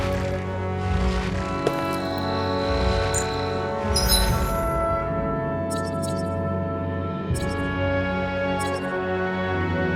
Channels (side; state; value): both; identical; correlation 1.00